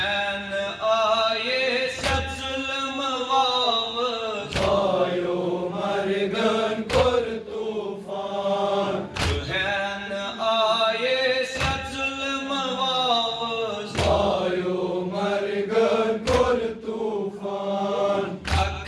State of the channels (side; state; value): both; identical; correlation 1.00